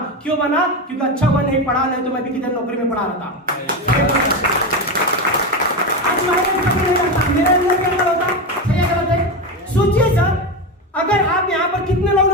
क्यों बना? क्योंकि अच्छा हुआ नहीं पढ़ा, नहीं तो मैं भी किधर नौकरी में पढ़ा रहता। मेरे अंदर क्या होता? सही गलत है? सोचिए सर, अगर आप यहाँ पर कितने लोग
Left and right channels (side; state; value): both; normal; correlation 0.16